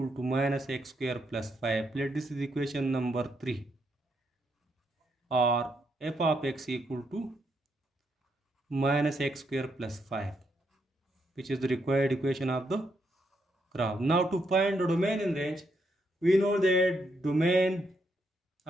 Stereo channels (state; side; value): normal; both; correlation 0.78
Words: to minus x square plus 5. Let this is equation number 3, or f of x equal to minus x square plus 5, which is the required equation of the graph. Now to find the domain in range, we know that domain